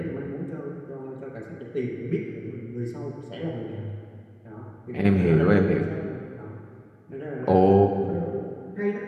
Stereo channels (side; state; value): both; identical; correlation 1.00